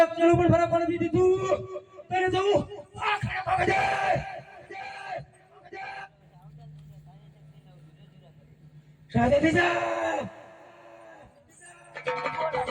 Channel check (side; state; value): both; identical; correlation 1.00